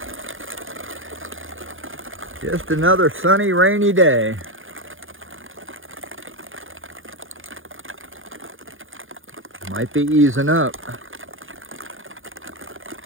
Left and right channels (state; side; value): late; left; 0.58 ms